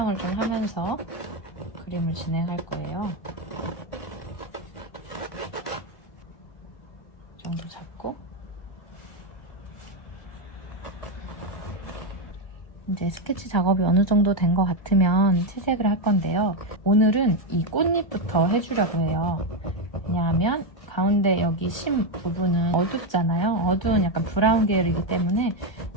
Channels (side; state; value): right; late; 1.3 ms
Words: 좀 하면서 그림을 진행할 거예요. 이 정도 잡고 이제 스케치 작업이 어느 정도 된 것 같으면 채색을 할 건데요. 오늘은 이 꽃잎부터 해주려고 해요. 왜냐하면 가운데 여기 심 부분은 어둡잖아요. 어두운 약간 브라운 계열이기 때문에